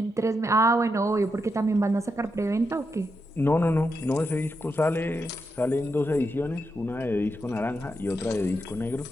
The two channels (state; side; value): normal; both; correlation 0.84